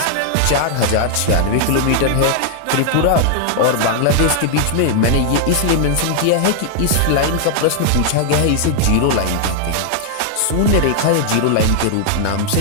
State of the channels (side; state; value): both; different; correlation 0.00